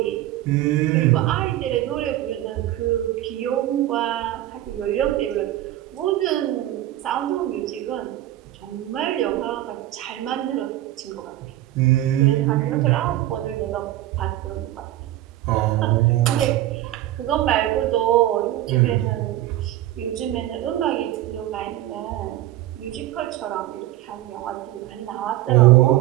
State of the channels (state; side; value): quieter; left; 14.4 dB